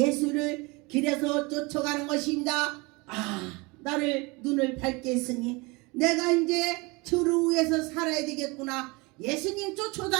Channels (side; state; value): left; quieter; 26.1 dB